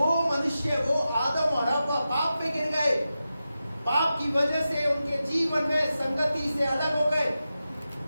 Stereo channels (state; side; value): inverted; both; correlation -0.91